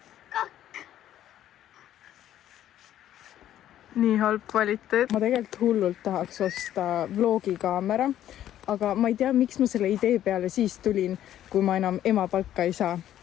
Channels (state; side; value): quieter; right; 11.8 dB